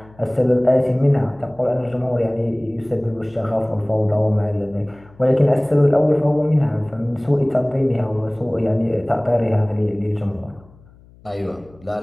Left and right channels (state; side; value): noise; left; hum, 26 dB below the sound